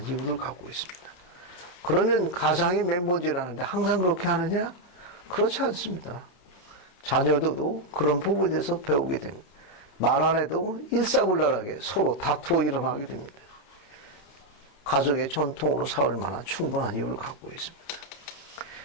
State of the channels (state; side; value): late; right; 28 ms